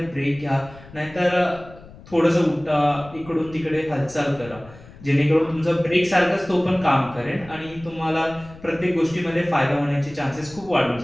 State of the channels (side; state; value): left; noise; rumble, 20 dB below the sound